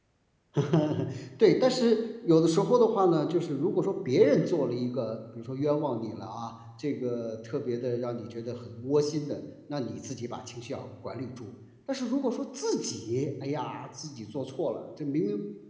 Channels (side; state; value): both; identical; correlation 1.00